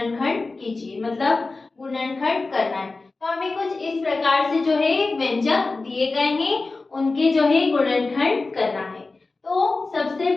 कीजिए, मतलब गुणनखंड करना है। तो हमें कुछ इस प्रकार से जो है व्यंजक दिए गए हैं, उनके जो है गुणनखंड करना है। तो सबसे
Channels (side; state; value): right; quieter; 3.6 dB